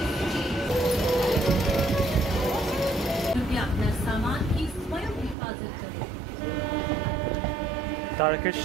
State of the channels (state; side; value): drops out; left; at 5.4 s